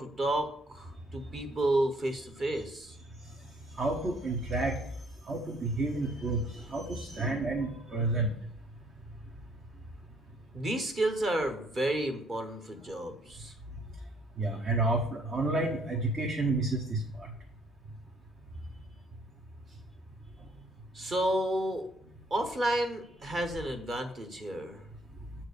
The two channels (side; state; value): both; normal; correlation 0.64